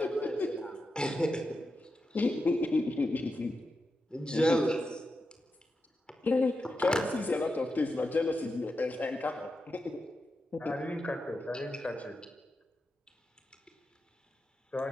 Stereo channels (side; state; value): both; normal; correlation 0.88